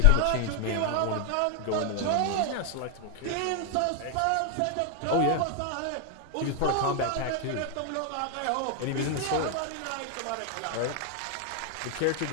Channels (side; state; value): both; different; correlation 0.00